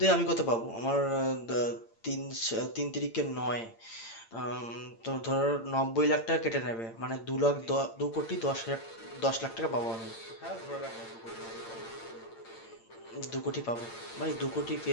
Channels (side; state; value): right; late; 8.8 ms